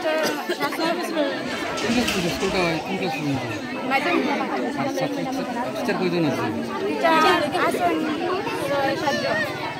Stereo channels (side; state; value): both; identical; correlation 1.00